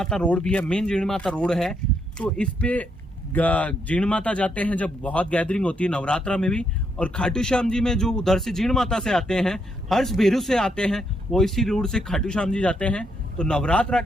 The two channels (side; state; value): both; normal; correlation 0.76